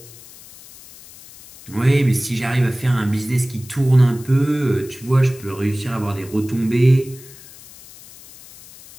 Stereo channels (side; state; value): left; noise; hiss, 20 dB below the sound